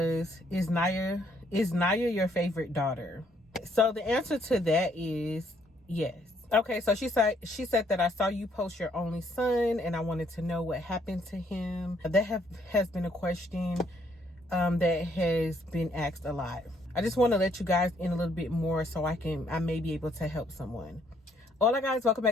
is Nyiah your favorite daughter? So the answer to that is yes. Okay, so she said that I saw you post your only son and I wanted to know what happened to him. That has been a question that has been asked a lot. I just want to let you guys in a little bit more so I may be able to help someone. Hola guys, welcome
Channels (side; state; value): both; normal; correlation 0.68